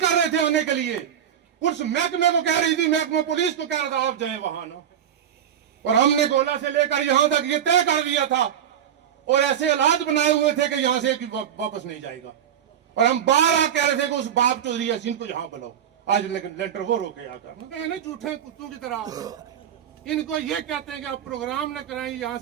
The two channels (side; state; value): left; quieter; 9.5 dB